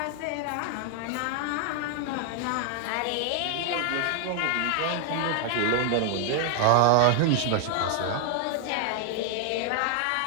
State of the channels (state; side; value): different; both; correlation 0.00